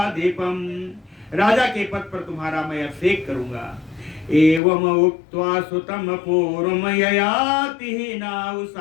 राजा के पद पर तुम्हारा मैं अभिषेक करूंगा। एवं उक्त्वा सुतम पूर्वम ययाति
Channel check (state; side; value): drops out; right; at 4.6 s